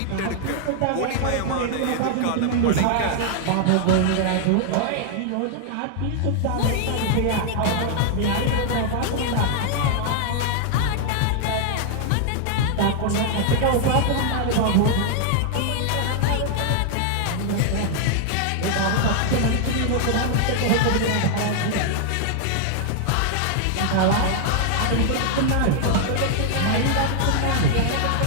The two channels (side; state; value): both; different; correlation 0.00